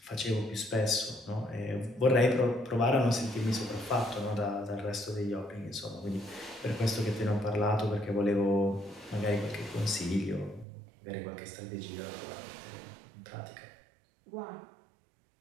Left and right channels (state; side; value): drops out; left; at 10.7 s